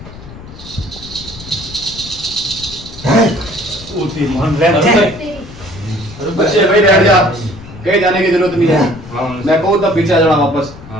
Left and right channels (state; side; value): noise; left; rumble, 16 dB below the sound